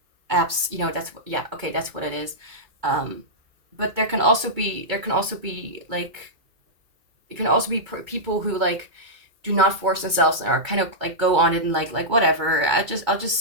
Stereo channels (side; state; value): left; late; 2.3 ms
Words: apps, you know, that's what, yeah, okay, that's what it is. But there can also be like, it can also be people who like do not force themselves and are kind of like go on it and like whatever, I'll just